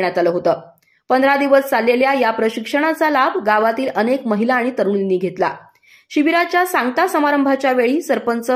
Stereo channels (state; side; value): identical; both; correlation 1.00